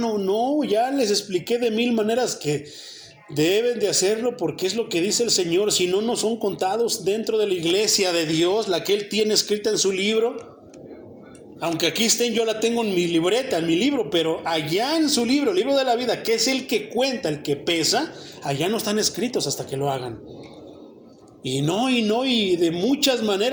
no, ya les expliqué de 1000 maneras que deben de hacerlo porque es lo que dice el Señor, si no, no son contados dentro de la iglesia de Dios, la que Él tiene escrita en su libro. Aunque aquí estén, yo la tengo en mi libreta, en mi libro, pero allá en su libro, el libro de la vida, que es el que cuenta, el que pesa, allá no están escritos hasta que lo hagan. Y de muchas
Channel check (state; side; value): identical; both; correlation 1.00